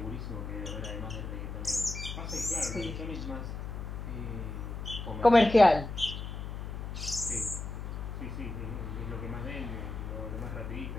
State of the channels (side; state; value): left; noise; hum, 6 dB below the sound